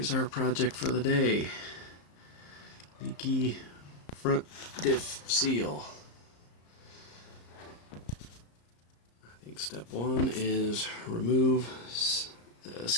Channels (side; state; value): right; late; 34 ms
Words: Here's our project for the day. Leaky front diff seal. I think step one is remove the